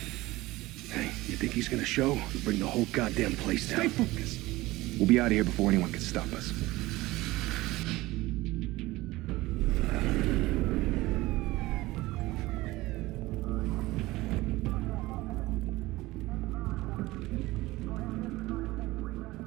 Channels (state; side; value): quieter; left; 19.2 dB